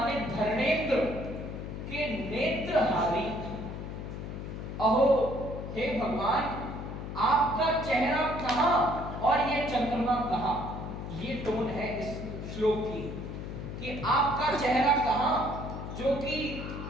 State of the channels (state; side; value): noise; left; hum, 7 dB below the sound